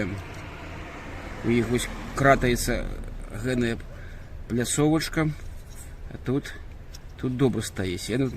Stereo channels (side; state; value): both; identical; correlation 1.00